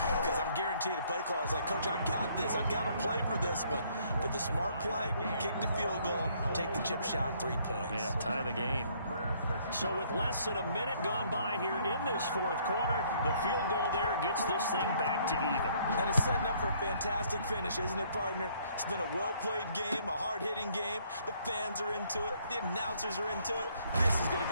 Because I'm guaranteed the play caller is like, Coach, I've got this. I've got to play for this one. But the smart play, kick the field goal, take the chip shot, 3 points. Yeah, tie the game. So with less than a minute gone by here in this 4th quarter, the field goal there gets this thing back to even. And it's setting up for a fantastic finish, isn't it, partner? It's been a well-played game, a hard-hitting game. The fans are into it. The announcers are into it. This is going to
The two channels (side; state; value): both; inverted; correlation -0.64